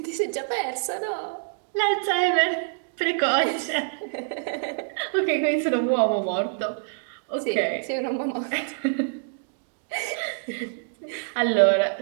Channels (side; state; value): left; silent; digital silence